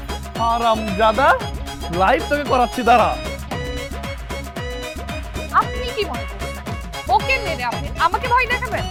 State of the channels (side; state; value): both; identical; correlation 1.00